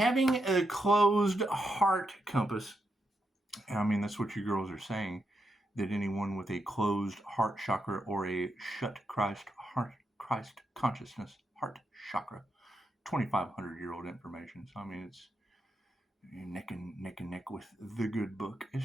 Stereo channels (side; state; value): both; normal; correlation 0.83